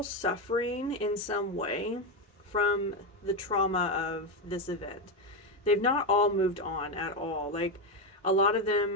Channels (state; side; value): normal; both; correlation 0.10